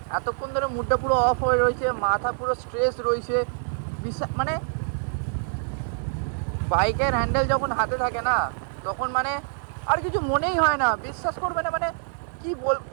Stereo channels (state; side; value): silent; left; 58 dB below the other